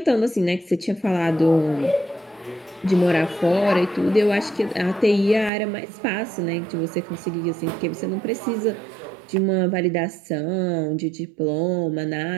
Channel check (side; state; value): left; drops out; at 5.5 s